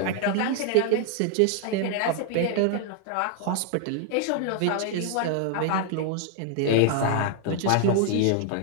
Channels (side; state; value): both; different; correlation 0.00